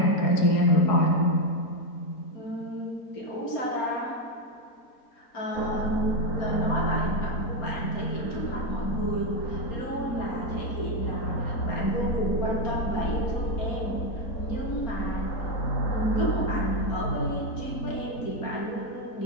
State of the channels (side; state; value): right; late; 4.3 ms